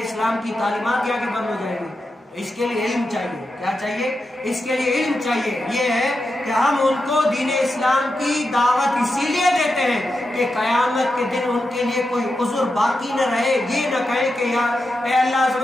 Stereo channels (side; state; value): both; normal; correlation 0.88